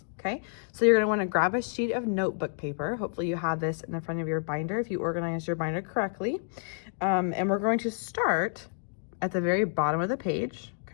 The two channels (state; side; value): silent; right; digital silence